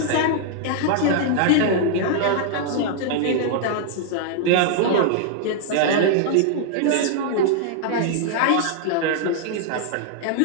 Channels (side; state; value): both; different; correlation -0.01